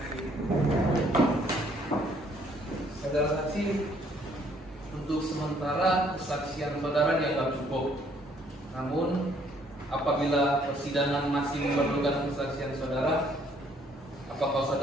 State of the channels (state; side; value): normal; both; correlation 0.64